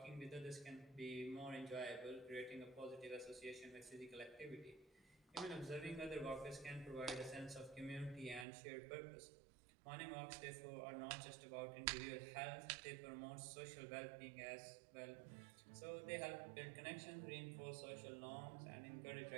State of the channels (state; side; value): drops out; left; at 8.5 s